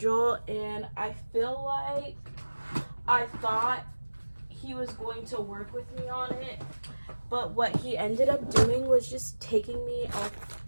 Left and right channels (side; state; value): both; inverted; correlation -1.00